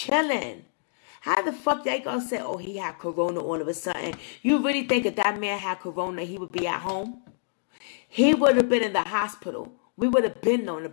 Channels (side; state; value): right; silent; digital silence